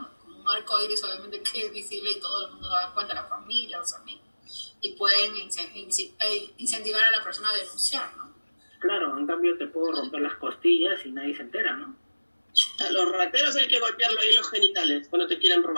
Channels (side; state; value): both; inverted; correlation -1.00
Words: como un arcoíris, obviamente que es visible y todo el mundo se da cuenta, la familia, los amigos, y pueden incentivar a la persona a denunciar, ¿no? Claro, en cambio te puedo romper las costillas y nadie se entera, ¿no? A los rateros hay que golpearlo ahí los genitales cuando te quieren